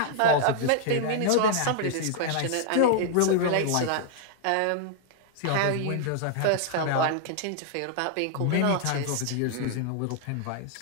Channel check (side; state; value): both; different; correlation -0.01